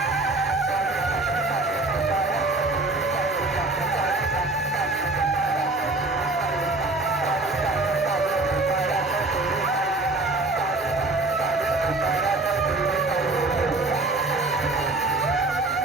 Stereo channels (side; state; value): left; quieter; 3.1 dB